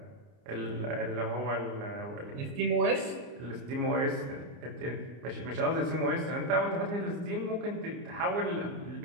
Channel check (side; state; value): left; late; 29 ms